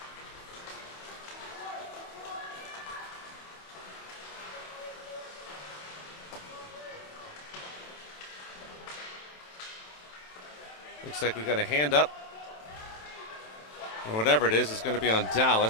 Looks like we got a hand up. Or whatever it is going to be on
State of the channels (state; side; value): late; right; 27 ms